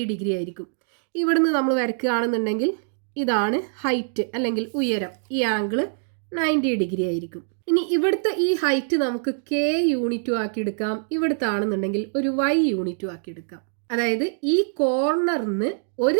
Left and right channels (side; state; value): left; silent; digital silence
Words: ഡിഗ്രി ആയിരിക്കും. ഇവിടുന്ന് നമ്മൾ വരയ്ക്കുകയാണെന്നുണ്ടെങ്കിൽ ഇതാണ് ഹൈറ്റ് അല്ലെങ്കിൽ ഉയരം. ഈ ആംഗിൾ 90 ഡിഗ്രി ആയിരിക്കും. ഇനി ഇവിടുത്തെ ഈ ഹൈറ്റ് നമുക്ക് k യൂണിറ്റും ആക്കി എടുക്കാം. ഇവിടുത്തെ ആണെന്നുണ്ടെങ്കിൽ ഒരു y യൂണിറ്റും ആക്കി എടുക്കാം. അതായത് ഈ കോർണറിന്